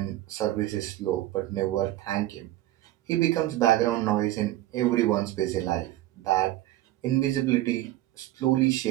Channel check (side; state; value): left; quieter; 15.2 dB